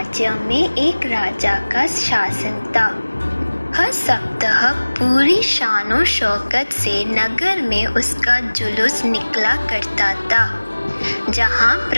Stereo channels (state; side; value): inverted; both; correlation -1.00